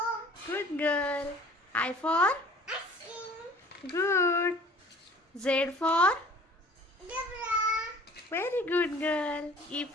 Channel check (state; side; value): normal; both; correlation 0.49